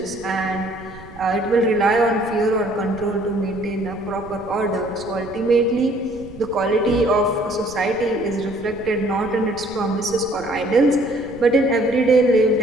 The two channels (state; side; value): noise; right; rumble, 19 dB below the sound